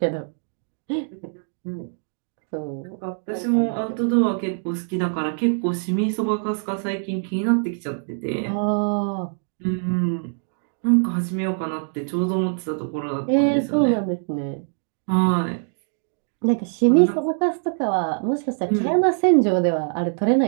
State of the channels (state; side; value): silent; left; digital silence